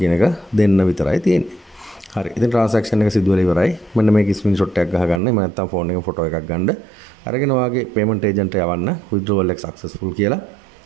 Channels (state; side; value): drops out; left; at 5.2 s